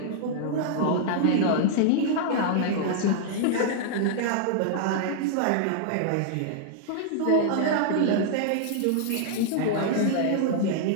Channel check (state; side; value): different; both; correlation -0.01